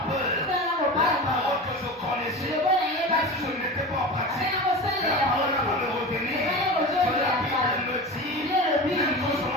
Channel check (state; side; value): normal; both; correlation 0.29